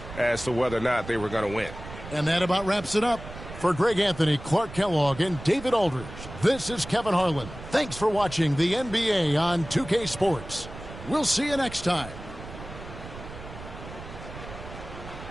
as to whether or not they were going to win. And that about wraps it up. For Greg Anthony, Clark Kellogg, and David Aldridge, this is Kevin Harlan. Thanks for watching the NBA on 2K Sports. We'll see you next time.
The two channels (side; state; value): right; noise; rumble, 13 dB below the sound